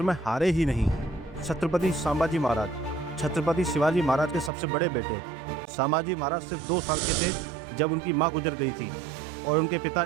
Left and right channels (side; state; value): left; drops out; at 4.5 s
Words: में हारे ही नहीं। छत्रपति संभाजी महाराज। छत्रपति शिवाजी महाराज के सबसे बड़े बेटे संभाजी महाराज सिर्फ 2 साल के थे जब उनकी मां गुजर गई थी और उनके पिता